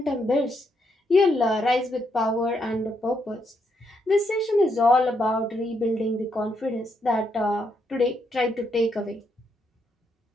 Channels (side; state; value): both; normal; correlation 0.77